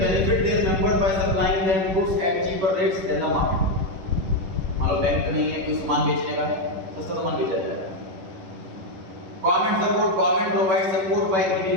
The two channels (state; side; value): late; left; 11 ms